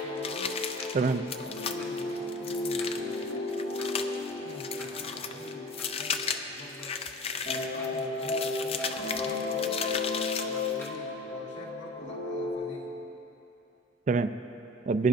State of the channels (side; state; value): both; normal; correlation 0.38